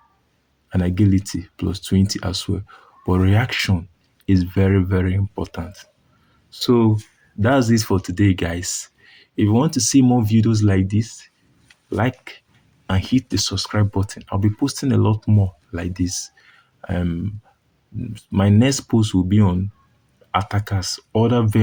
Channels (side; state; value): both; identical; correlation 1.00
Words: and agility plus 20 as well. But reaction is very, very important. So that's it for today, guys. If you want to see more videos like this, like and hit the subscribe button. I'll be posting a lot more like this. Um, my next post will be on attackers, other